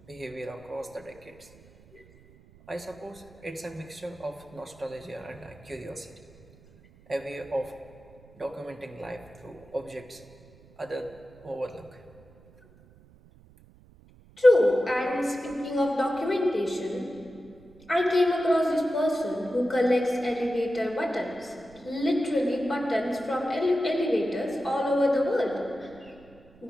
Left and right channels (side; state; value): right; noise; rumble, 25 dB below the sound